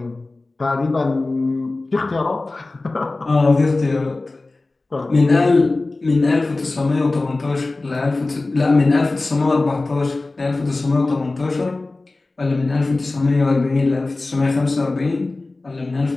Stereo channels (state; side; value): quieter; right; 3.2 dB